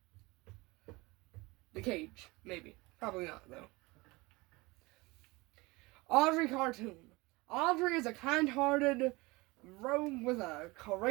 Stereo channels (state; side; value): quieter; left; 23.2 dB